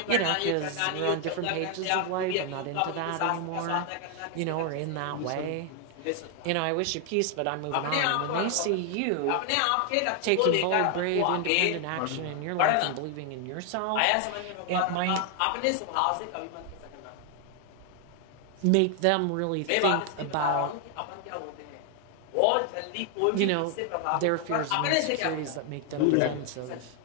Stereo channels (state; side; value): different; both; correlation 0.00